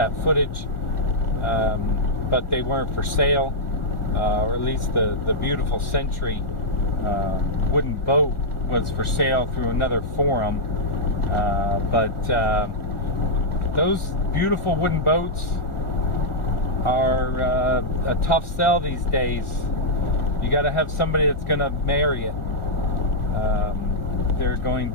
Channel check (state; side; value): late; right; 1.4 ms